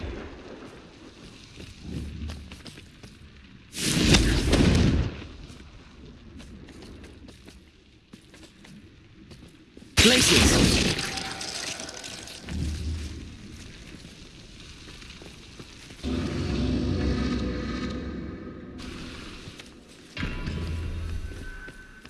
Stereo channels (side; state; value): both; identical; correlation 1.00